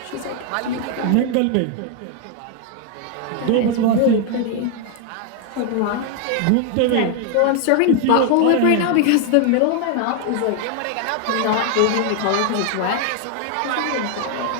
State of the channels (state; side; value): different; both; correlation 0.00